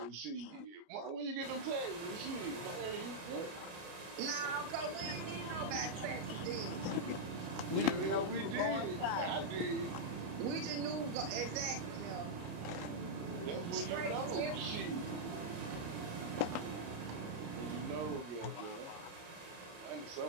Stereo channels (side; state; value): left; late; 32 ms